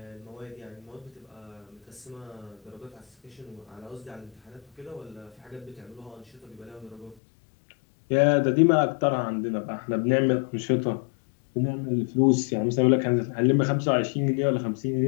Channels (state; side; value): drops out; right; at 7.2 s